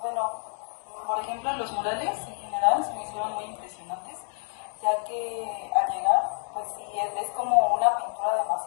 Bueno, por ejemplo, los murales en general se me hicieron muy impresionantes, ya que al llegar, pues sí, es como una pintura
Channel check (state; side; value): silent; right; 57 dB below the other